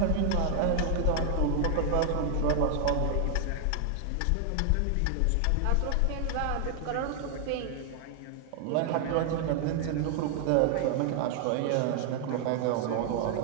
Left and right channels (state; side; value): different; both; correlation 0.00